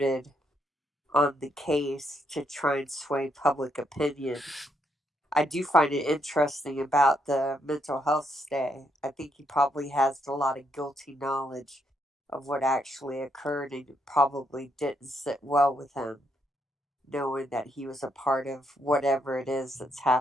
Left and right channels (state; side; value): normal; both; correlation 0.76